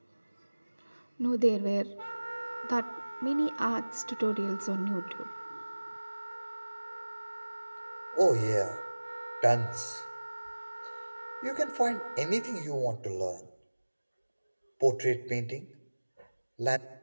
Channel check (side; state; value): both; inverted; correlation -1.00